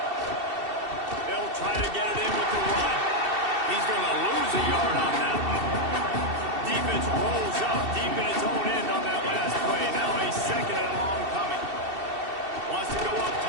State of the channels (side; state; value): left; late; 2.7 ms